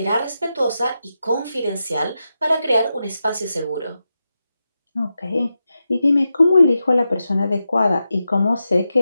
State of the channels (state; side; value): inverted; both; correlation -0.89